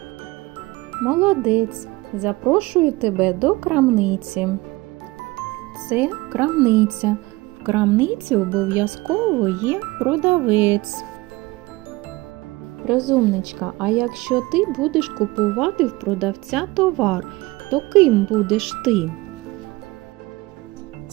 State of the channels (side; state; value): left; quieter; 21.3 dB